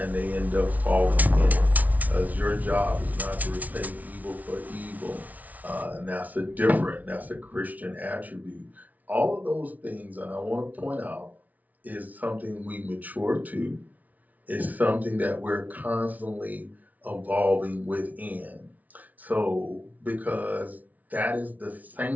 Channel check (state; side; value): late; left; 0.073 ms